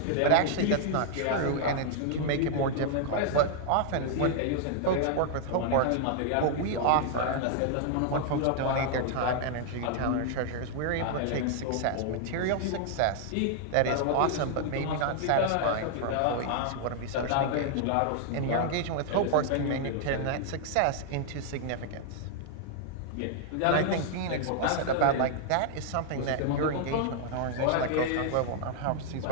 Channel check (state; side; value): different; both; correlation 0.00